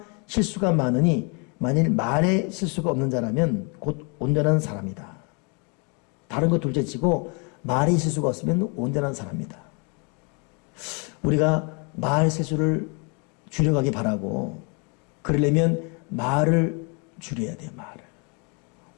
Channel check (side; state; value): right; quieter; 34.4 dB